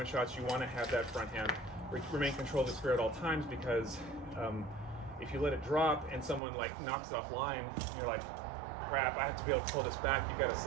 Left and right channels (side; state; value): left; drops out; at 6.4 s